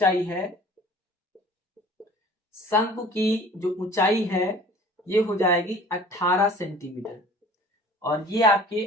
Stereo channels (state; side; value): normal; both; correlation 0.47